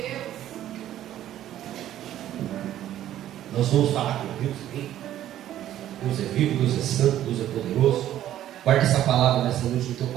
Nós vamos falar com Deus. Hein? Deus é vivo, Deus é santo, Deus é poderoso. Guarde essa palavra nessa noite no teu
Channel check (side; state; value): left; quieter; 12.3 dB